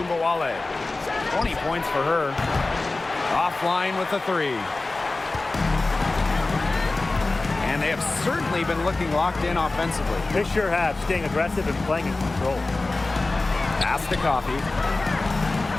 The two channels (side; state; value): right; quieter; 3.3 dB